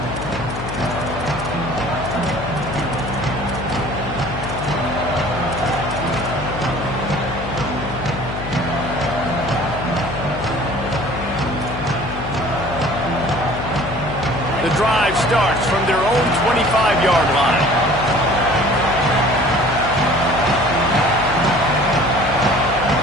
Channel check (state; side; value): noise; left; hum, 8 dB below the sound